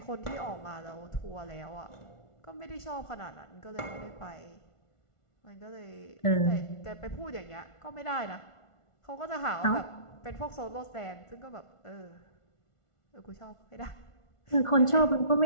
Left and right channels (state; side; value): late; right; 1.4 ms